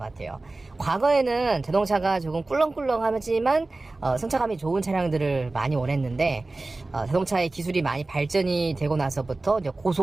과거에는 자동차가 조금 꿀렁꿀렁하지만 승차감이 좋은 차량들을 많이 원했는데, 자동차의 기술이 많이 발전이 되고 나서부터 이제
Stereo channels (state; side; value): quieter; left; 3.1 dB